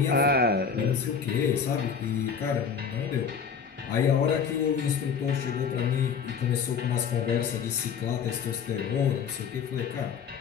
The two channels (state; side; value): quieter; right; 6.6 dB